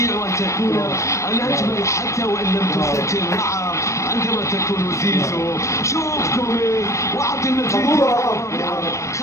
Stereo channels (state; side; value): late; right; 0.15 ms